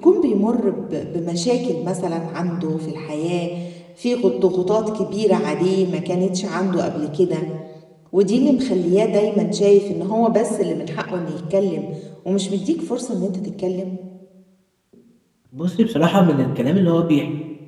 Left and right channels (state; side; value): identical; both; correlation 1.00